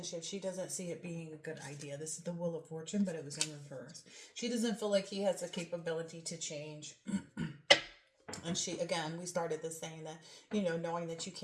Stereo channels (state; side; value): identical; both; correlation 1.00